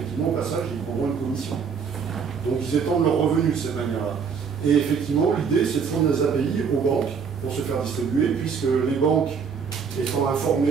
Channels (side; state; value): left; quieter; 6.2 dB